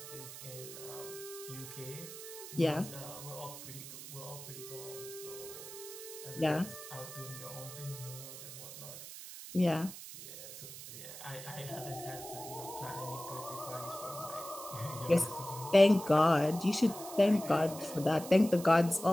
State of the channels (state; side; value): noise; right; hiss, 12 dB below the sound